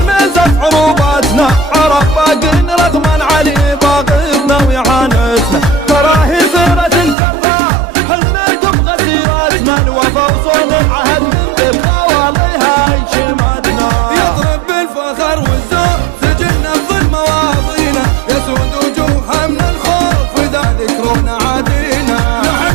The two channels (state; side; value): drops out; left; at 7.2 s